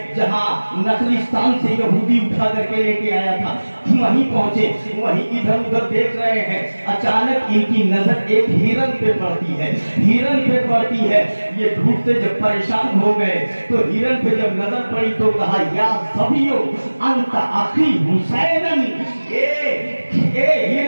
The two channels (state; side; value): inverted; both; correlation -1.00